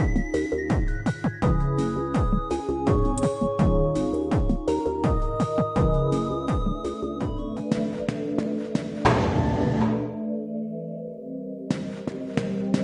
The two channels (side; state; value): both; identical; correlation 1.00